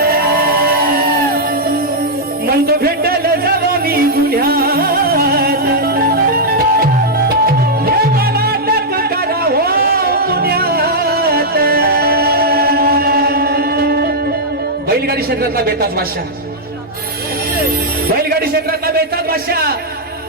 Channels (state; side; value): normal; both; correlation -0.05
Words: क्षेत्रातला बेताज बादशाह, बैलगाडी क्षेत्रातला बेताज बादशाह